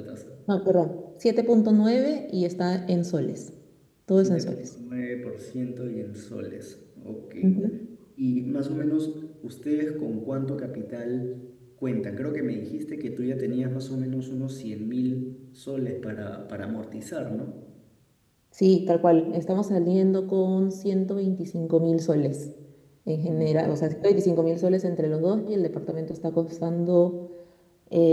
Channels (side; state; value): both; identical; correlation 1.00